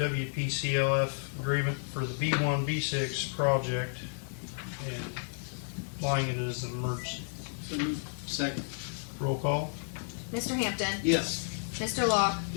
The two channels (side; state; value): right; silent; digital silence